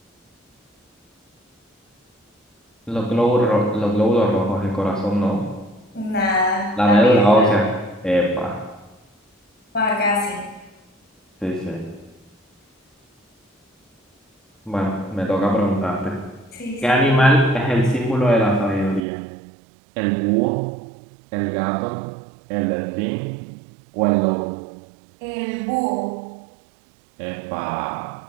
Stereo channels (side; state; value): left; drops out; at 19.0 s